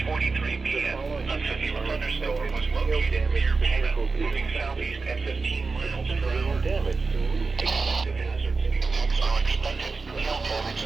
p.m., a severe thunderstorm was located near Pana, moving southeast at 15 miles per hour. Expected hazards are expected. Hail damage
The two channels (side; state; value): left; quieter; 4.2 dB